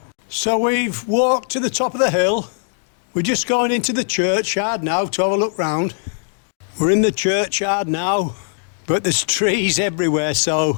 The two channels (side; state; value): right; silent; digital silence